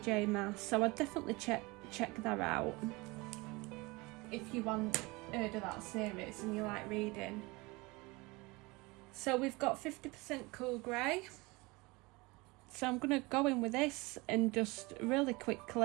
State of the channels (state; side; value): quieter; left; 24.2 dB